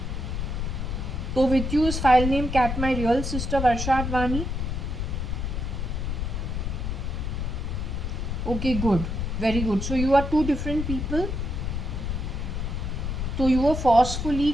So with you is file name cat my real sister JAYA.ADVANI? Okay, good. Very good. So you are two different people. So you were forcefully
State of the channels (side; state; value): left; noise; rumble, 2 dB below the sound